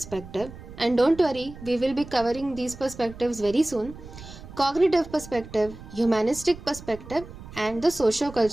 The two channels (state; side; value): noise; right; rumble, 15 dB below the sound